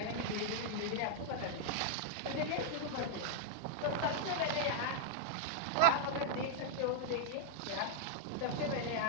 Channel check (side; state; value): both; different; correlation -0.01